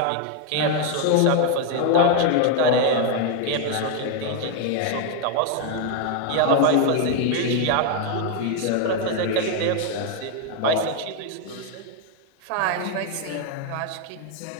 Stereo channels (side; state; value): both; different; correlation 0.01